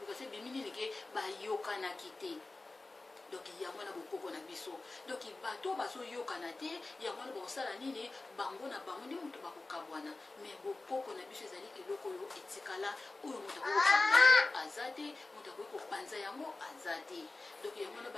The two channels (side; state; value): right; quieter; 3.3 dB